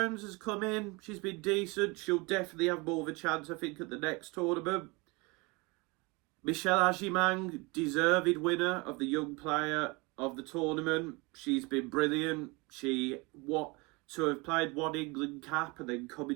has come in. She's been decent. She'll definitely have more of a chance, I think, at the next tournament. Michelle Agimang, deserved winner of the Young Player of the tournament. She's been brilliant. To have played 1 England cap and then come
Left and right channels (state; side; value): quieter; left; 26.6 dB